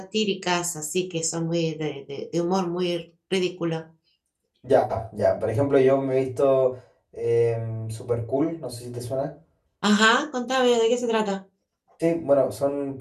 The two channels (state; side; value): identical; both; correlation 1.00